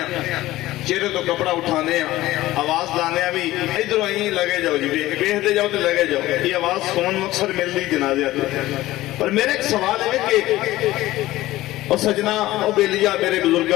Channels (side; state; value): right; quieter; 16.6 dB